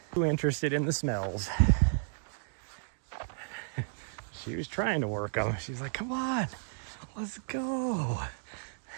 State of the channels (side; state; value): left; silent; digital silence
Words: Too interested in the smells. She was trying to work them. She's like, come on, let's go.